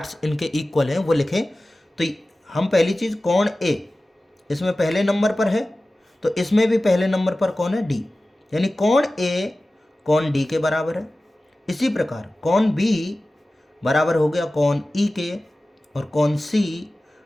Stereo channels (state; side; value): normal; both; correlation 0.96